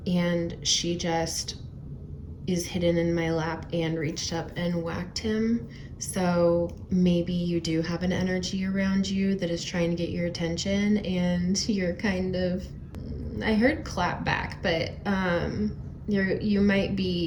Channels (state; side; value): identical; both; correlation 1.00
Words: And she just is hidden in my lap and reached up and whacked him. So maybe you do have an energy around you that is trying to get your attention, and you're kind of, I heard clap back, but you might